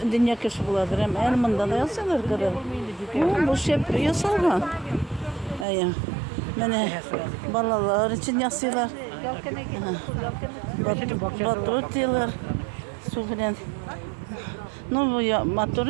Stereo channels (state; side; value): drops out; left; at 5.7 s